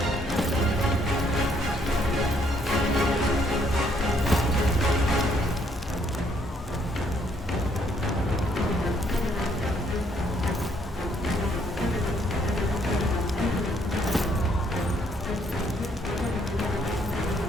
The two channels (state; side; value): normal; both; correlation 0.69